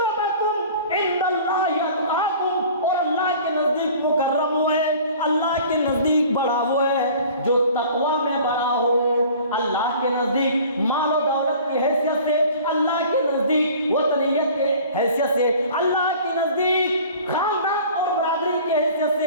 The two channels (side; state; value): both; inverted; correlation -0.46